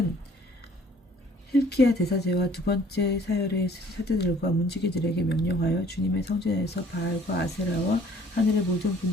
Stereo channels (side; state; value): both; normal; correlation 0.56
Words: hilki야 대사제와 두 번째 사열의 사제들과 문지기들에게 명령하여 주님의 성전에서 바알과 아세라와 하늘의 모든